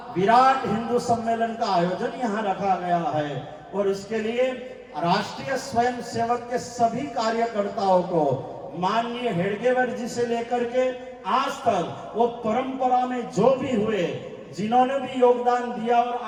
विराट हिंदू सम्मेलन का आयोजन यहाँ रखा गया है और इसके लिए राष्ट्रीय स्वयंसेवक के सभी कार्यकर्ताओं को माननीय हेडगेवर जी से लेकर के आज तक वो परंपरा में जो भी हुए जिन्होंने भी योगदान दिया और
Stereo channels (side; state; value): both; identical; correlation 1.00